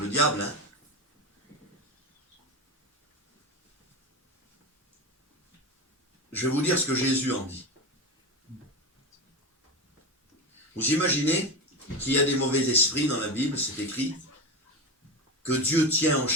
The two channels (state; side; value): normal; both; correlation 0.20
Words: le diable, hein. Je vais vous dire ce que Jésus en dit. Vous imaginez qu'il y a des mauvais esprits dans la Bible, c'est écrit, que Dieu tient